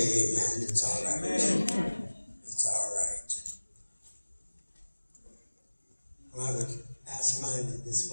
amen. It's all right. It's all right. Well, I would ask mine in this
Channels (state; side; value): inverted; both; correlation -1.00